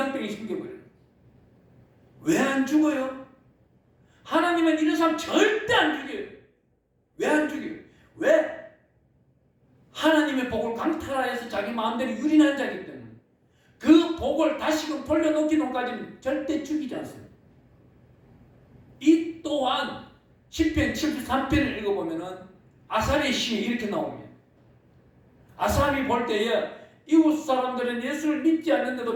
생겨버려요. 왜 안 죽어요? 하나님은 이런 사람 절대 안 죽여요. 왜 안 죽여요? 왜? 하나님의 복을 강탈하여서 자기 마음대로 유린한 자이기 때문에 그 복을 다시금 돌려놓기 전까지는 절대 죽이지 않습니다. 이 또한 시편 73편을 읽어보면은 아삽의 시에 이렇게 나옵니다. 아삽이 볼 때에 이웃 사람들은 예수를 믿지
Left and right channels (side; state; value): both; identical; correlation 1.00